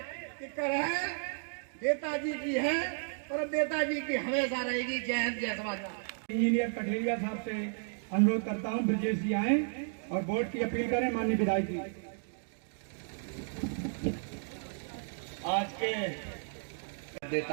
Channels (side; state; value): left; silent; digital silence